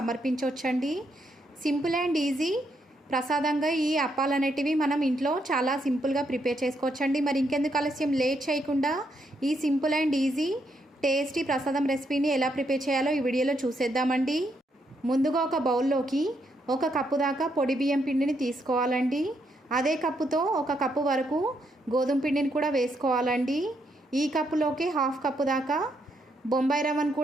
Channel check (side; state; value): both; normal; correlation 0.77